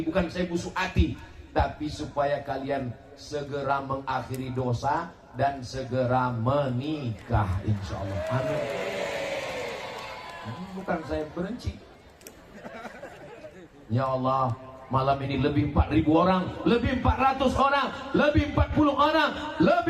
bukan saya busuk hati, tapi supaya kalian segera mengakhiri dosa dan segera menikah insyaallah. Amin. Bukan saya benci. Ya Allah, malam ini lebih 4.000 orang, lebih 400 orang, lebih 40 orang,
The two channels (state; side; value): identical; both; correlation 1.00